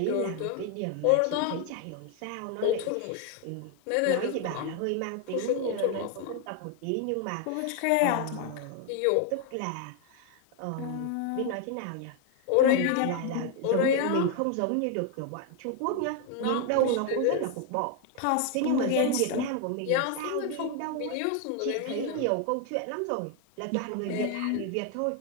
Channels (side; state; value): both; different; correlation 0.00